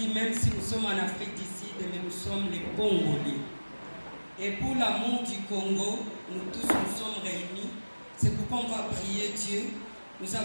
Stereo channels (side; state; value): both; inverted; correlation -1.00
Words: même si nous sommes en Afrique du Sud, mais nous sommes les Congolais. Et pour l'amour du Congo, nous tous nous sommes réunis. C'est pourquoi on va prier Dieu. Nous